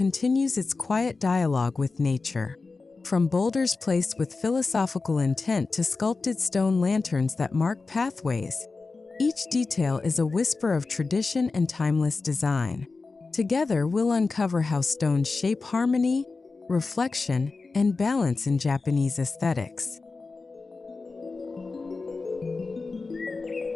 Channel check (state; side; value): quieter; right; 4.0 dB